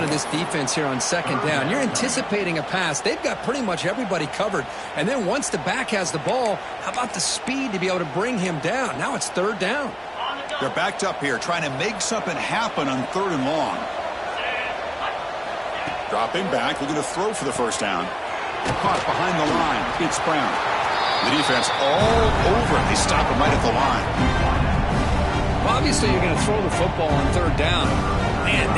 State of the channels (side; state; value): both; identical; correlation 1.00